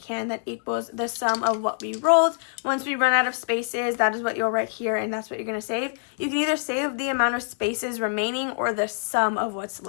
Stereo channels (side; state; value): right; silent; digital silence